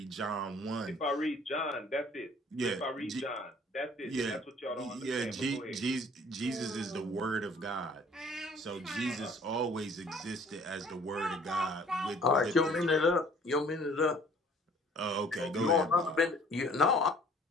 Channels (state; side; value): normal; both; correlation 0.55